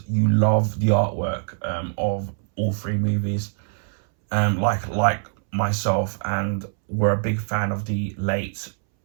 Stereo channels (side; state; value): left; silent; 63 dB below the other